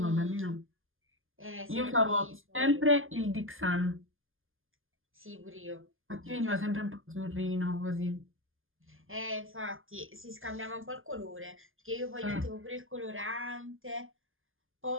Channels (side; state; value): left; late; 0.59 ms